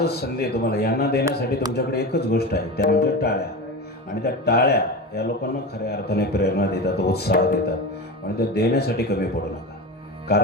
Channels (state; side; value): normal; both; correlation 0.25